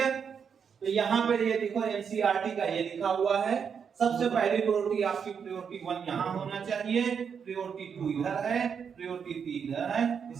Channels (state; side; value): quieter; left; 6.8 dB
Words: तो यहाँ पे ये देखो एनसीईआरटी का ये लिखा हुआ है। सबसे पहली प्रायोरिटी आपकी प्रायोरिटी 1 यहाँ होना चाहिए, प्रायोरिटी 2 इधर है, प्रायोरिटी 3 इधर है,